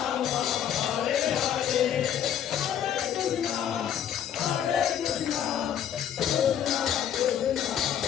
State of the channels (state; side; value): quieter; right; 9.5 dB